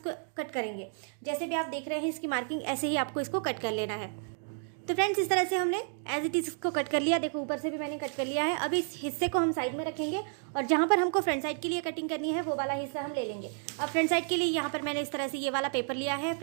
कट करेंगे, जैसे भी आप देख रहे हैं इसकी मार्किंग, ऐसे ही आपको इसको कट कर लेना है। तो फ्रेंड्स इस तरह से हमने एज इट इज इसको कट कर लिया। देखो ऊपर से भी मैंने कट कर लिया है। अब इस हिस्से को हम साइड में रखेंगे और जहाँ पर हमको फ्रंट साइड के लिए कटिंग करनी है वो वाला हिस्सा हम ले लेंगे। अब फ्रंट साइड के लिए यहाँ पर मैंने इस तरह से ये वाला पेपर लिया है।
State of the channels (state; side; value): silent; left; 57 dB below the other